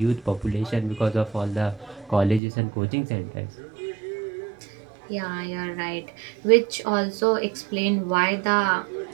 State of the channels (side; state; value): left; drops out; at 2.4 s